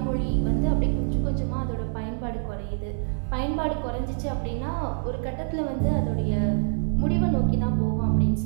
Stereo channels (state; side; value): silent; left; digital silence